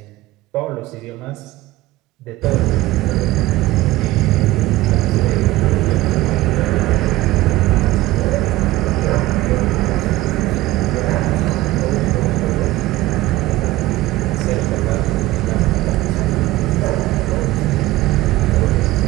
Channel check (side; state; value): left; quieter; 17.5 dB